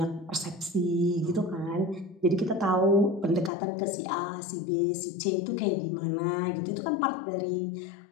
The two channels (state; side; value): drops out; right; at 3.5 s